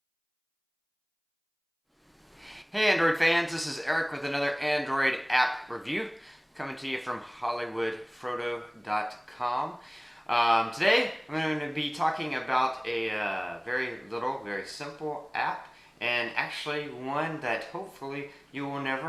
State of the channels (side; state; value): both; identical; correlation 1.00